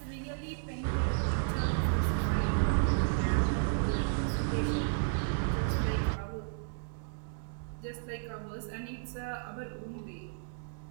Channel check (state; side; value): silent; left; digital silence